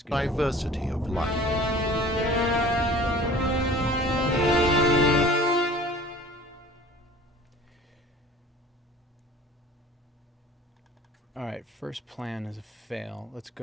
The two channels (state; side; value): normal; both; correlation 0.46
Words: good. Diversity of life. All right, first plan is a fail. Let's